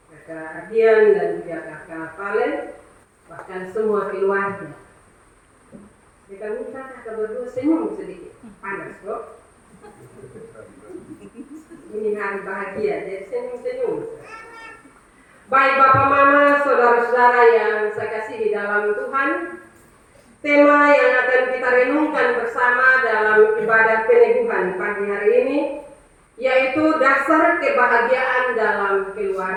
kakak Ardian dan juga kakak Valen, bahkan semua keluarga. Kita minta kakak berdua senyum sedikit, panas kok. Ini hari bahagia, jadi senyum-senyum. Baik Bapak Mama, saudara-saudara yang saya kasih di dalam Tuhan, tema yang akan kita renungkan bersama dalam ibadah peneguhan pagi hari ini yaitu dasar kebahagiaan dalam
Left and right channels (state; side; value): identical; both; correlation 1.00